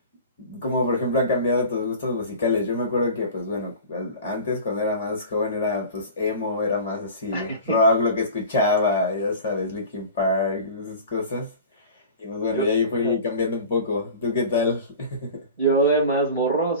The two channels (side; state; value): both; inverted; correlation -0.37